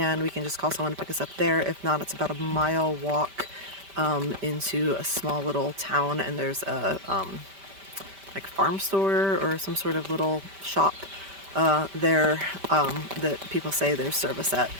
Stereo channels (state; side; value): late; left; 5.1 ms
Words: we can just call someone to pick us up there. If not, it's about a mile walk into a small little town, and there's a like farm store or some sort of little shop there that people say there's service at.